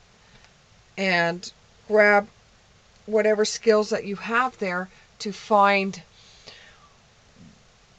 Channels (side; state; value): both; identical; correlation 1.00